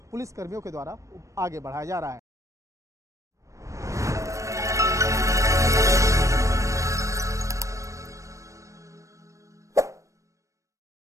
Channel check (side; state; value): left; late; 0.15 ms